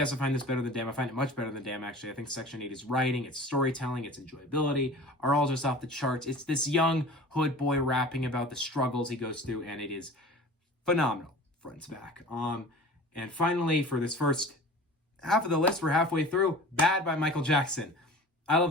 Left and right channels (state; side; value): normal; both; correlation 0.40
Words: I find this better than Damn. I find it much better than Damn, actually. I think Section 80's writing, its storytelling, its enjoyability are all just off the charts. It's this young hood boy rapping about the struggles he goes through, and it is phenomenal, front to back. And finally, for this first half of the list, we're halfway through, Bad by Michael Jackson. I love